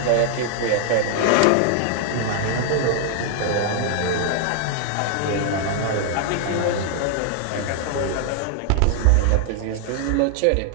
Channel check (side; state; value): both; different; correlation 0.00